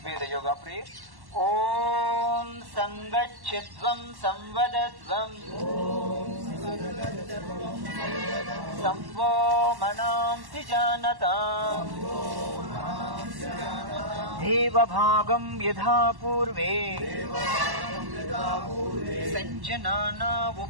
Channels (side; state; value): left; late; 1.1 ms